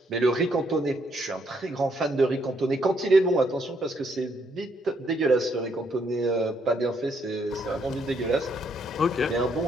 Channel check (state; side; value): normal; both; correlation 0.72